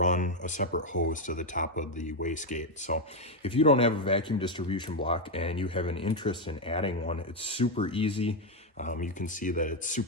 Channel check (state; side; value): normal; both; correlation 0.05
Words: a separate hose to the top of the wastegate. So if you don't have a vacuum distribution block and you have an interest in adding one, it's super easy. You can see that it's